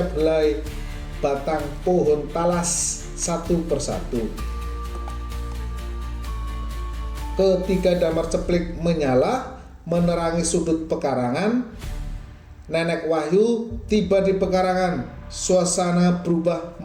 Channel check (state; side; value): identical; both; correlation 1.00